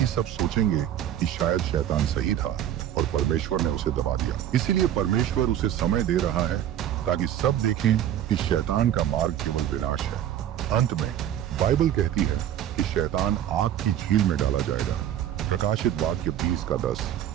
सब सोचेंगे कि शायद शैतान सही था और परमेश्वर ने उसे दबा दिया। इसीलिए परमेश्वर उसे समय दे रहा है ताकि सब देखें कि शैतान का मार्ग केवल विनाश है। अंत में बाइबल कहती है कि शैतान आग की झील में डाला जाएगा। प्रकाशित वाक्य 20:10।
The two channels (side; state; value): left; quieter; 11.0 dB